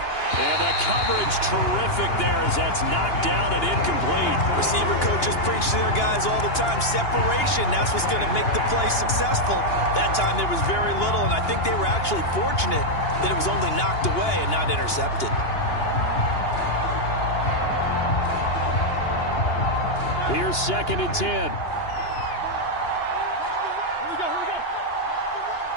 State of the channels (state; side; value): late; right; 2.9 ms